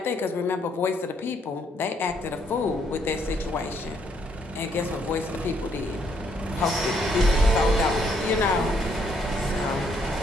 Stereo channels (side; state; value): both; normal; correlation 0.70